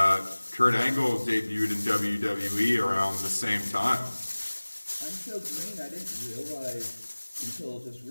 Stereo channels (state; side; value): inverted; both; correlation -1.00